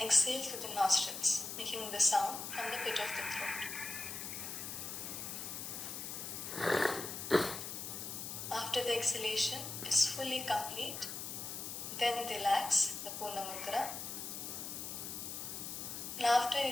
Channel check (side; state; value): left; noise; hiss, 6 dB below the sound